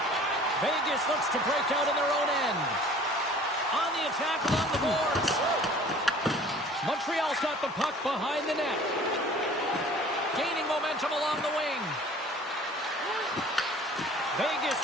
Vegas looks to break out in their own end. On the attack along the boards. Montreal's got the puck behind the net. Gaining momentum along the wing. Vegas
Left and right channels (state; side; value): normal; both; correlation 0.48